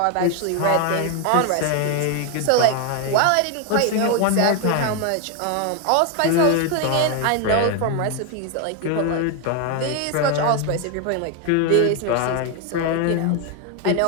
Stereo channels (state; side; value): different; both; correlation 0.01